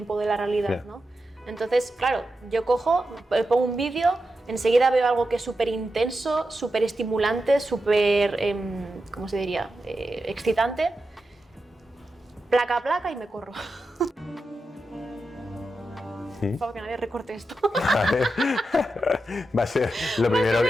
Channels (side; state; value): both; normal; correlation 0.89